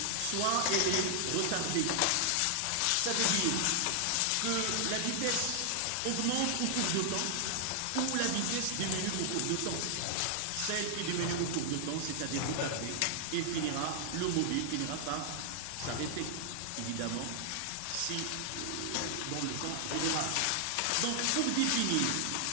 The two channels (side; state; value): both; different; correlation -0.01